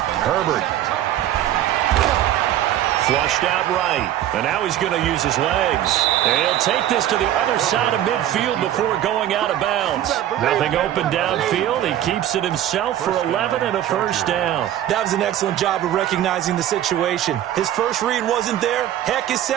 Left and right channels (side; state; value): left; quieter; 12.1 dB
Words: Herbert. Flushed out right. And now he's going to use his legs. And he'll take this to the other side of midfield before going out of bounds. Nothing open downfield. He keeps it himself for 11 and a first down. That was an excellent job of recognizing the situation. His first read wasn't there. Heck, his